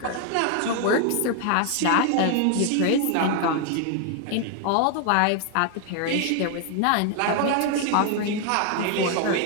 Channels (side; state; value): both; different; correlation 0.00